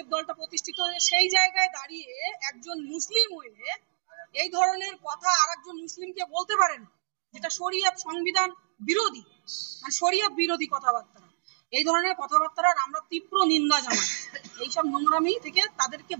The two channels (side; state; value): left; silent; digital silence